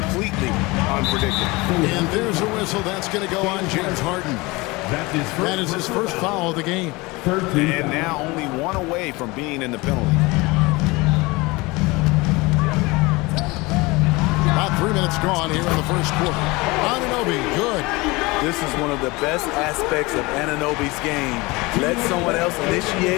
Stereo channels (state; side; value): quieter; right; 23.5 dB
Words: unpredictable. And there's a whistle. That's going to go on James Harden. That is his first foul of the game. And now only 1 away from being in the penalty. About 3 minutes gone here in the first quarter. Anunoby, good. This is one of the best aspects of Anunoby's game. Let someone else